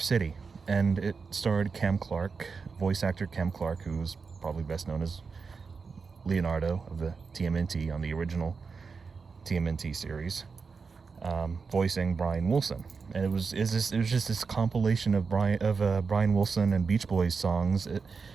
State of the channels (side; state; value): left; quieter; 5.0 dB